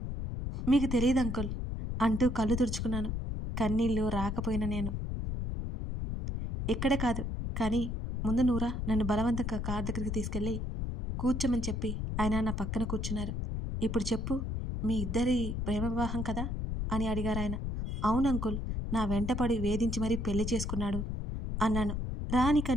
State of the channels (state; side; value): noise; left; rumble, 3 dB below the sound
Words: మీకు తెలియదు అంకుల్ అంటూ కళ్ళు తుడుచుకున్నాను. కన్నీళ్ళు రాకపోయినా నేను. ఇక్కడే కాదు, కానీ ముందు నూరా నన్ను బలవంతంగా కార్ దగ్గరికి తీసుకెళ్ళి కూర్చోమని చెప్పి ఆయన నా పక్కన కూర్చున్నారు. ఇప్పుడు చెప్పు, మీ ఇద్దరి ప్రేమ వివాహం కదా అని అడిగారు ఆయన. అవును అంకుల్, నా వెంటపడి వేధించి మరీ పెళ్లి చేసుకున్నాడు అన్నాను రాని